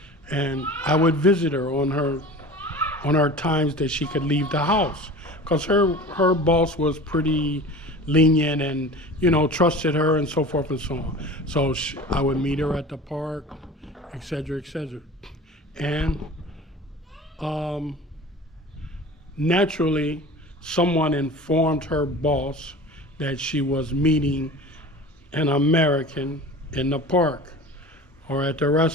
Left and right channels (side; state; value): both; normal; correlation 0.38